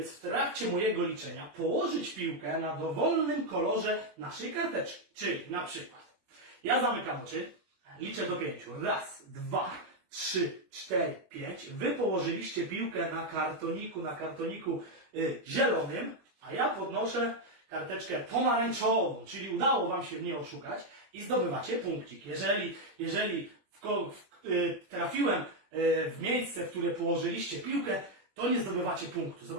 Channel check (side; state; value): left; late; 21 ms